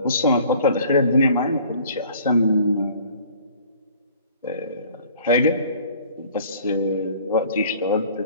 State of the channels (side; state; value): both; inverted; correlation -0.52